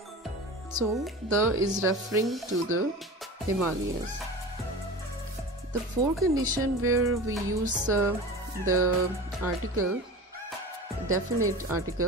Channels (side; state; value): both; normal; correlation 0.34